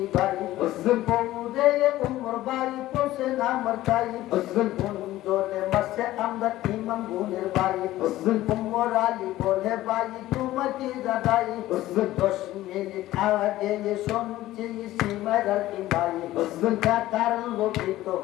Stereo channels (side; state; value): right; quieter; 15.6 dB